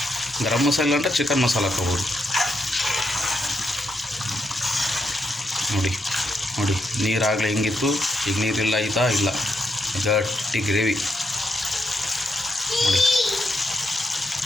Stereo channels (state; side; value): normal; both; correlation 0.81